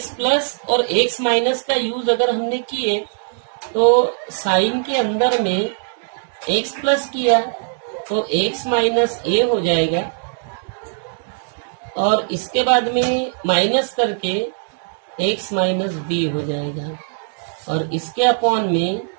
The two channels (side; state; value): left; silent; digital silence